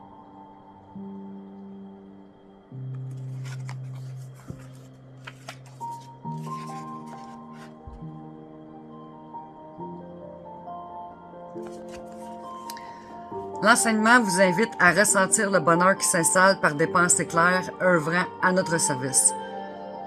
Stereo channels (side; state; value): both; identical; correlation 1.00